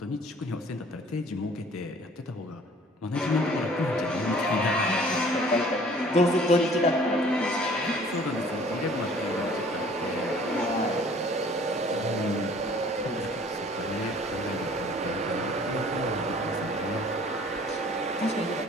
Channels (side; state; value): both; normal; correlation 0.53